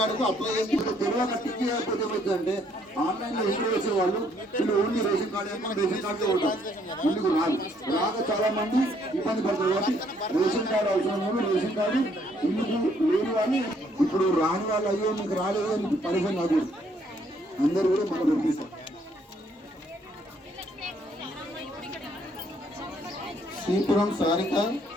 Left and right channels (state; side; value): normal; both; correlation 0.67